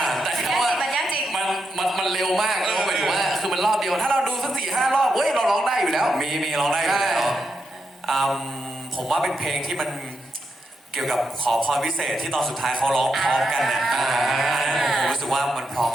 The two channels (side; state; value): both; normal; correlation 0.84